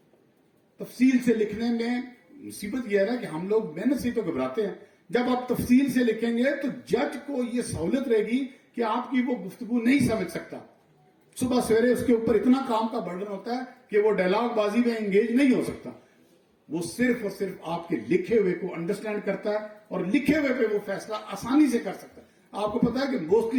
تفصیل سے لکھنے میں مصیبت یہ ہے کہ ہم لوگ محنت سے تو گھبراتے ہیں. جب آپ تفصیل سے لکھیں گے تو جج کو یہ سہولت رہے گی کہ آپ کی وہ گفتگو نہیں سمجھ سکتا. صبح سویرے اس کے اوپر اتنا کام کا برڈن ہوتا ہے کہ وہ ڈائلاگ بازی میں انگیج نہیں ہو سکتا. وہ صرف اور صرف آپ کے لکھے ہوئے کو انڈرسٹینڈ کرتا ہے اور لکھے ہوئے پہ وہ فیصلہ آسانی سے کر سکتا ہے. آپ کو پتا ہے کہ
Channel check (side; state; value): both; identical; correlation 1.00